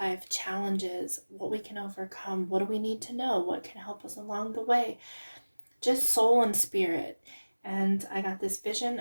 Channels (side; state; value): both; inverted; correlation -1.00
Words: challenges, what we can overcome, what do we need to know, what can help us along the way, just soul and spirit. And I got this vision